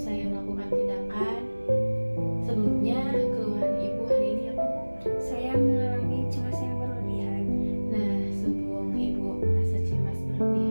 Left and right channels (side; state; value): both; inverted; correlation -1.00